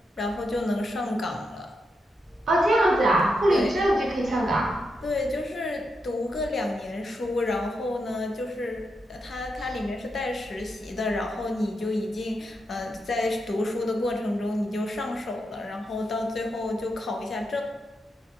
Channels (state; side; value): normal; both; correlation 0.84